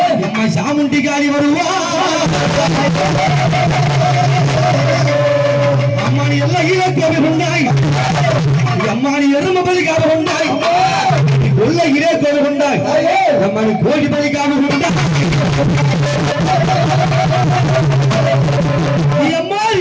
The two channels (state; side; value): identical; both; correlation 1.00